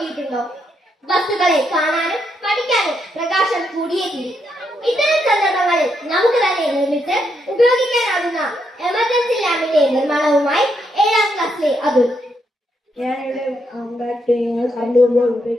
വസ്തുക്കളെ കാണാനും പഠിക്കാനും പ്രകാശം കൂടിയേ തീരും. ഇത്തരം സന്ദർഭങ്ങളിൽ നമുക്ക് തന്നെ നിർമ്മിച്ച് ഉപയോഗിക്കാനാകുന്ന എമർജൻസി ലാമ്പിന്റെ നിർമ്മാണവുമായി 7ാം ക്ലാസ്സിലെ അതുൽ. ഞാനിവിടെ കറണ്ട് പോകുമ്പോൾ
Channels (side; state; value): both; normal; correlation 0.79